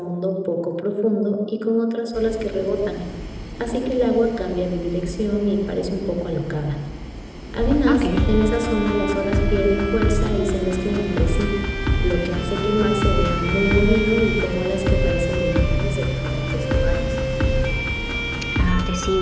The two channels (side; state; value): both; identical; correlation 1.00